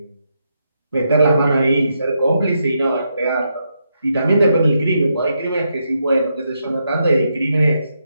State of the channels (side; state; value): both; inverted; correlation -0.82